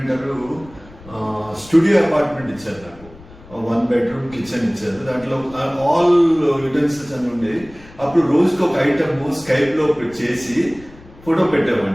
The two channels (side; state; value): left; noise; rumble, 22 dB below the sound